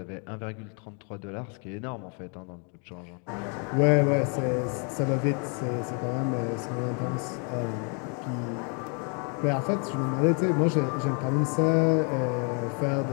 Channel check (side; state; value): right; quieter; 38.5 dB